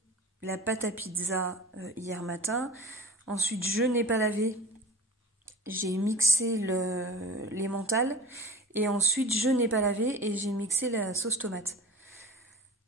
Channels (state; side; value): normal; both; correlation 0.37